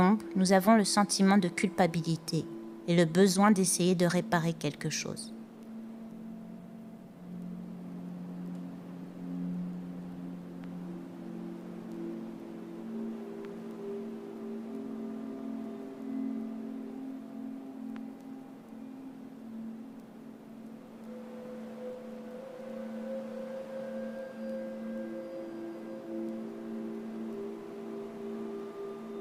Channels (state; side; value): identical; both; correlation 1.00